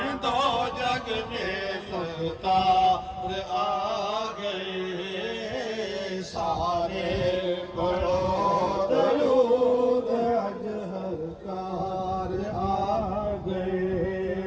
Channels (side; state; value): both; identical; correlation 1.00